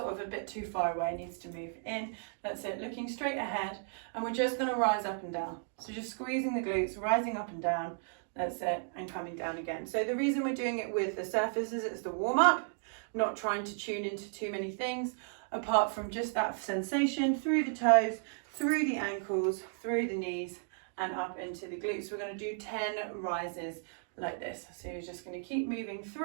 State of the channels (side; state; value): left; silent; digital silence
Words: of a bit too far away, needs to move in. That's it, looking straight ahead. And we're just going to rise up and down. So just squeezing the glutes, rising up and down. That's it, and coming down again. So the reason we're doing it with the surface is it's the warm-up, not trying to tune into too many things, apart from just that sensation through the toes, through the ankles, through the knees, and up into the glutes. We're going to do 10 rises like this. So you're just going to keep moving